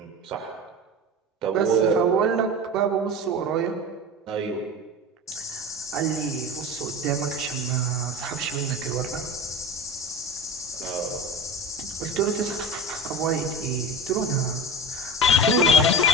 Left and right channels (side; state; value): both; normal; correlation 0.29